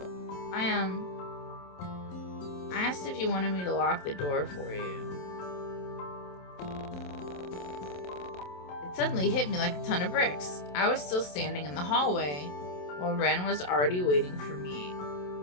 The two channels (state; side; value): late; right; 27 ms